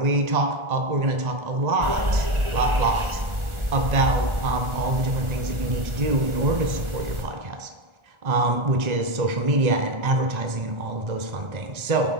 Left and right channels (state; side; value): late; left; 1.3 ms